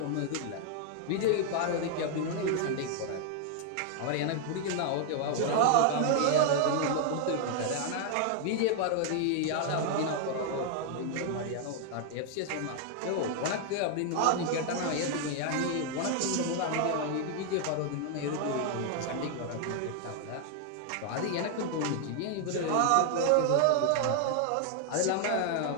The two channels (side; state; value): both; different; correlation 0.00